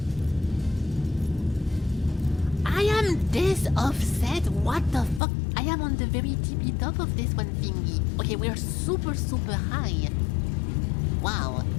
I am this offset? What the fuck? I am on the very tippy top of this one thingy. Okay, we're super, super high. Wow.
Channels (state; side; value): drops out; right; at 5.2 s